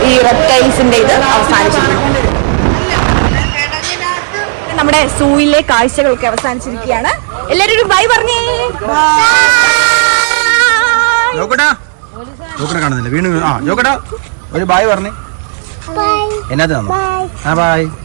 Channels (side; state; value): left; silent; digital silence